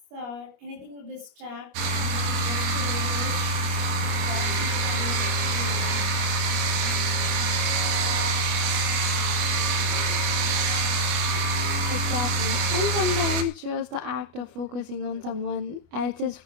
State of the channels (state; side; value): late; left; 25 ms